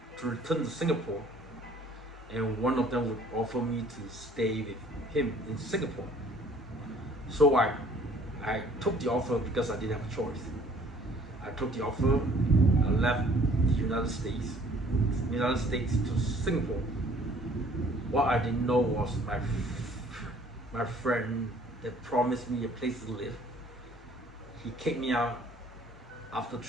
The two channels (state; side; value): normal; both; correlation 0.56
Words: return to Singapore, and one of them would offer me to stay with him in Singapore. So I took the offer because I didn't have a choice. I took the offer. I left the United States to Singapore. What I didn't know was my friend that promised me a place to live, he kicked me out after